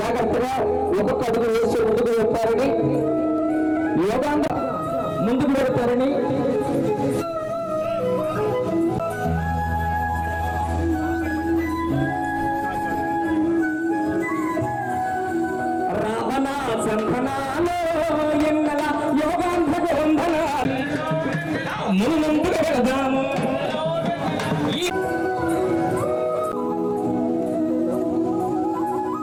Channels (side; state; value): both; identical; correlation 1.00